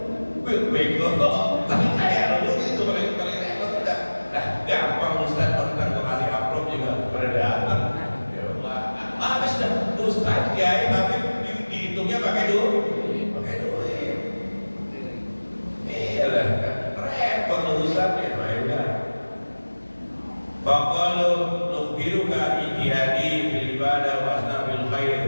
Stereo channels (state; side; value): inverted; both; correlation -1.00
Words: Bego, tapi kaya lu itu paling repot udah. Nah, gampang Ustaz tentang gua kasih upload juga pada datang. Ya Allah, habis dah Ustaz kiai tapi dihitungnya pakai duit. Pakai duit. Iyalah, repot urusannya, mainnya. Faqalu nukhbiruka ijtihadi bil ibadah wa asnabil